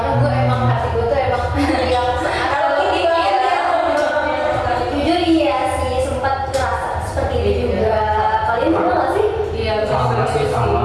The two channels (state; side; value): identical; both; correlation 1.00